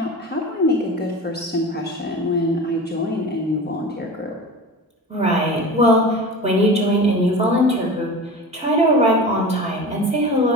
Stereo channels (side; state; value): both; normal; correlation 0.33